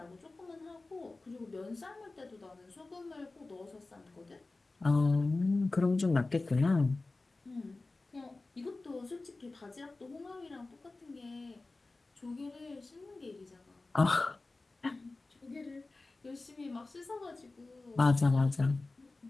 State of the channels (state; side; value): quieter; right; 3.3 dB